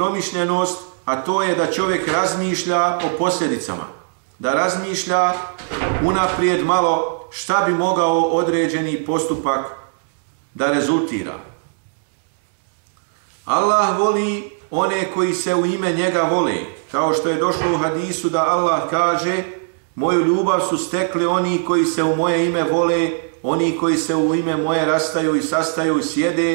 a to je da čovjek razmišlja o posljedicama, da razmišlja unaprijed malo šta bi mogao određeni postupak da rezultira. Allah voli one koji se u ime njega vole, kao što je došlo u hadisu da Allah kaže: moju ljubav su stekli oni koji se u moje ime vole, oni koji se u ime moje rastaju i sastaju i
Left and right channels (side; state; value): left; silent; digital silence